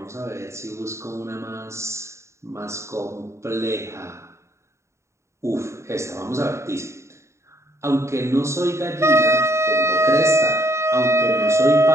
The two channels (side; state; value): left; late; 0.14 ms